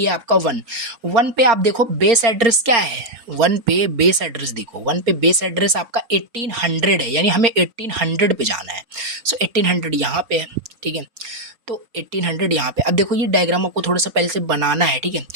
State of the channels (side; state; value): left; late; 4.3 ms